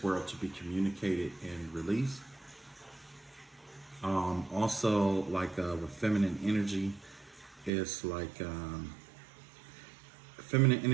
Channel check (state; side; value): drops out; left; at 7.7 s